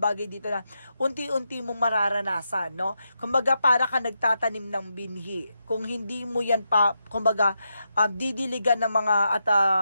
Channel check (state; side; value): inverted; both; correlation -0.85